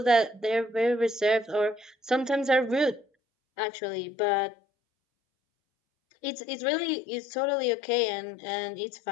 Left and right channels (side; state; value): right; drops out; at 3.1 s